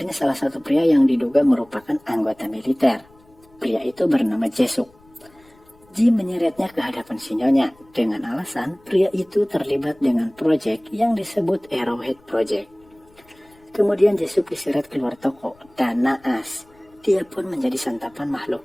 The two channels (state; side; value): noise; left; rumble, 29 dB below the sound